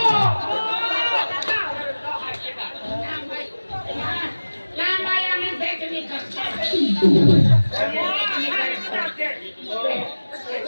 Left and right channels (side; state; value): both; inverted; correlation -1.00